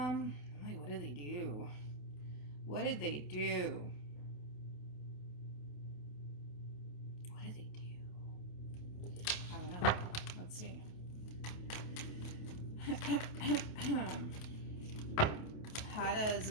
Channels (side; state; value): right; late; 28 ms